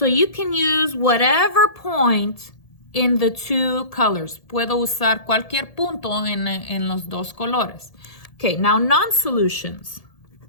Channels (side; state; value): right; late; 1.7 ms